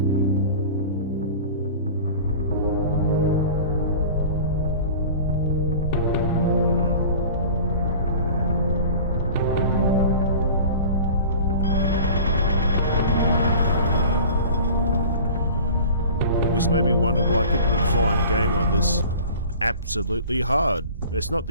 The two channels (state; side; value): inverted; both; correlation -0.40